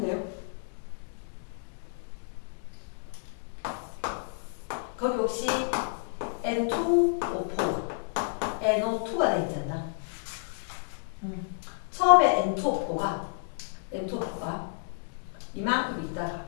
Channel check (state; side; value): silent; right; digital silence